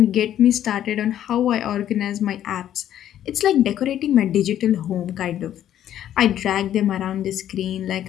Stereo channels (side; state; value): right; quieter; 11.2 dB